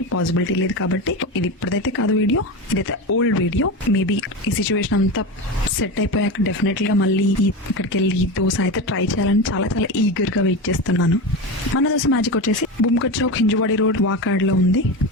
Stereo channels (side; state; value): both; normal; correlation 0.21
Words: పాసిబిలిటీ లేదు కాబట్టి ఇది ఇప్పుడైతే కాదు వీడియో, ఇదైతే ఓల్డ్ వీడియో. మేబీ ఈ సిచ్యువేషన్ అంతా సెట్ అయిపోయాక డెఫినెట్లీ గా మళ్ళీ ఇక్కడికి వెళ్ళి దోశ అయితే ట్రై చేయాలని చాలా ఈగర్ గా వెయిట్ చేస్తున్నాను. మన దోశ మ్యాజిక్ వచ్చేసి బుమ్కట్ చౌక్, హింజువాడి రోడ్, వాకాడ్ లో ఉంది,